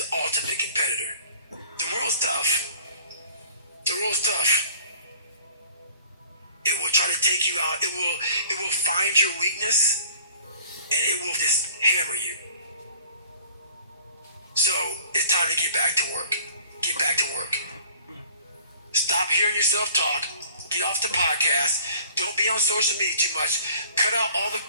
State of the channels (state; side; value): inverted; both; correlation -0.51